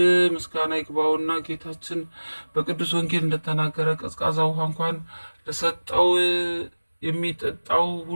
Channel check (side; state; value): both; inverted; correlation -1.00